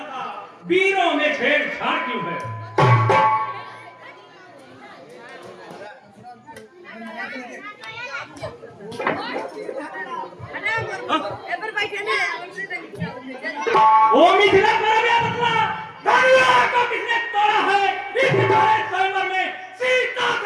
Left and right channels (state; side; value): identical; both; correlation 1.00